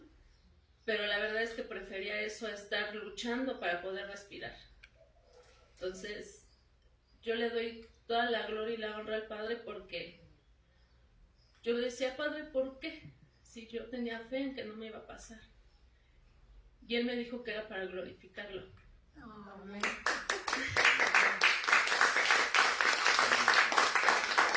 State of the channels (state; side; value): identical; both; correlation 1.00